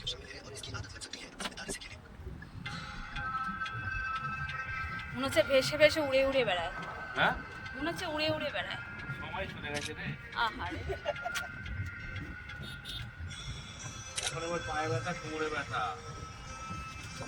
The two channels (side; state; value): both; identical; correlation 1.00